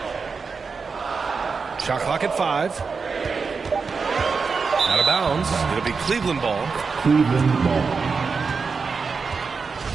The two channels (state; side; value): quieter; left; 5.0 dB